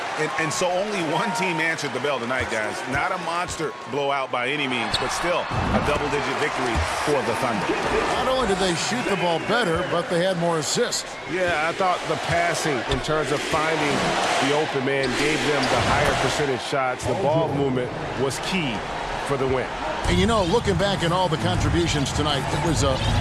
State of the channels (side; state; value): both; identical; correlation 1.00